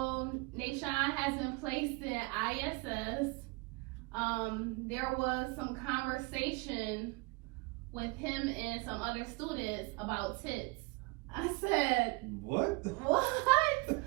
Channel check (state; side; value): quieter; left; 26.3 dB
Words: Nashawn has been placed in ISS. There was some conversation with him and some other students about tits. I said, What? what?